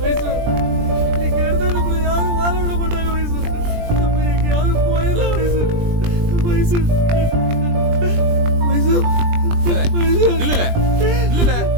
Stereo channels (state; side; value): late; left; 20 ms